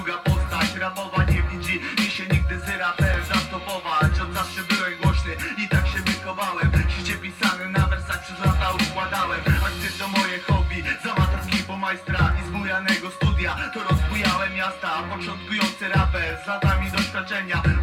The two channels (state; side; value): identical; both; correlation 1.00